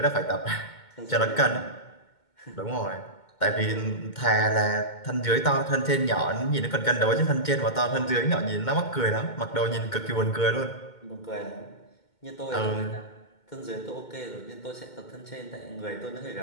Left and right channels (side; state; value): right; late; 2.2 ms